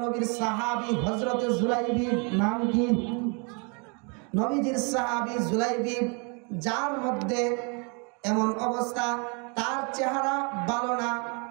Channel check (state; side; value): quieter; left; 34.8 dB